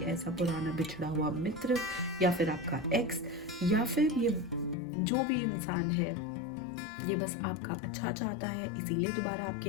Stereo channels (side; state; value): right; drops out; at 4.8 s